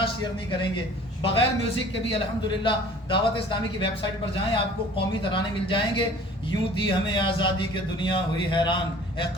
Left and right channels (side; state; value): both; normal; correlation 0.49